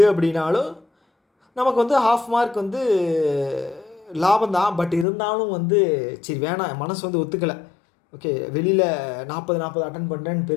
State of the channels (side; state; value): right; drops out; at 5.1 s